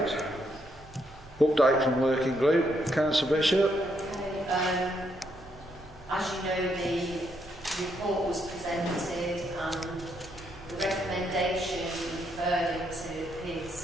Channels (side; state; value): both; normal; correlation 0.76